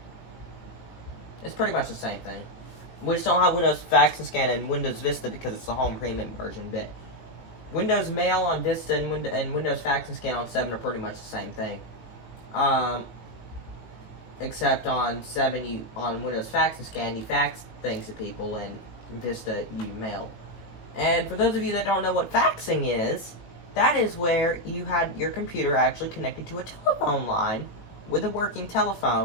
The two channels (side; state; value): right; late; 18 ms